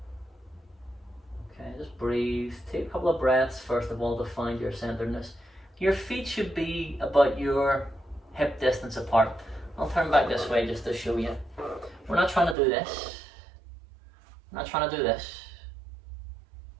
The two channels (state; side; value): drops out; left; at 12.6 s